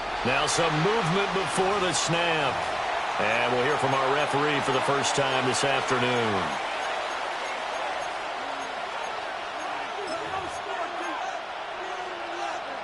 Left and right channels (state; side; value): identical; both; correlation 1.00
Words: Now some movement before the snap. And we'll hear from our referee for the first time this afternoon.